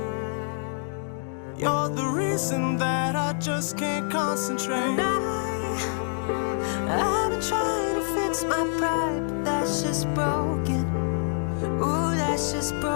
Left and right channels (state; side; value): silent; right; digital silence